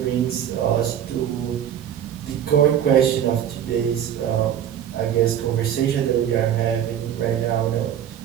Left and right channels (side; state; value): left; quieter; 9.9 dB